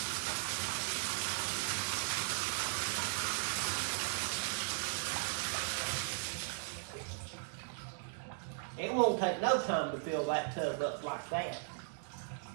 It won't take no time to fill that tub up like that.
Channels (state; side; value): silent; left; digital silence